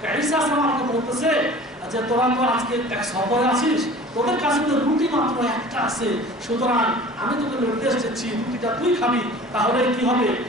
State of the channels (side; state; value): both; normal; correlation 0.43